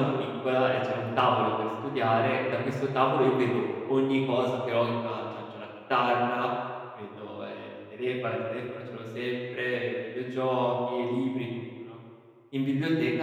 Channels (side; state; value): both; identical; correlation 1.00